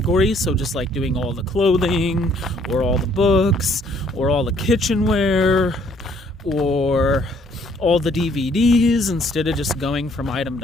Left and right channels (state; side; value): normal; both; correlation 0.64